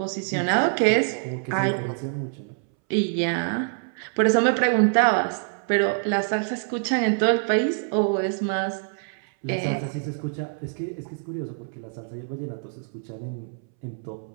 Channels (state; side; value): silent; left; 61 dB below the other